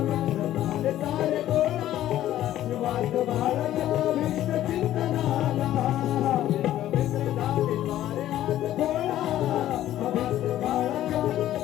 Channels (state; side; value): quieter; right; 13.0 dB